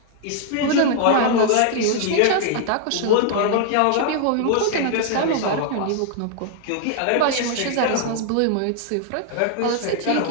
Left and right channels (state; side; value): different; both; correlation 0.00